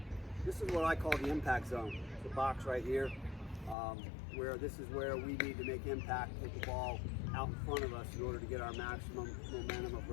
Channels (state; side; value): drops out; right; at 3.8 s